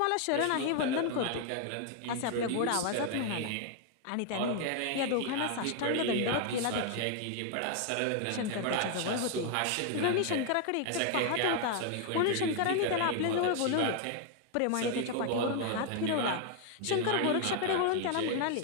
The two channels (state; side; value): different; both; correlation 0.00